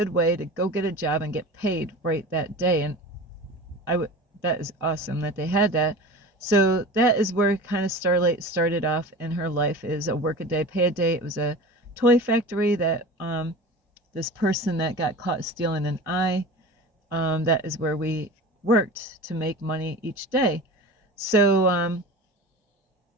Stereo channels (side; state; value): both; normal; correlation 0.34